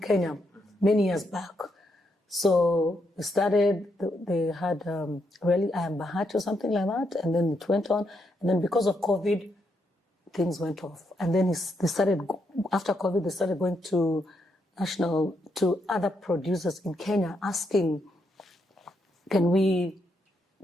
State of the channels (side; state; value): both; normal; correlation 0.79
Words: many years back. So they had really I Am Bahati or something like that, and then it went on. And then because of COVID, things went off. And then after COVID, they started going to other producers in Kenya asking, can we,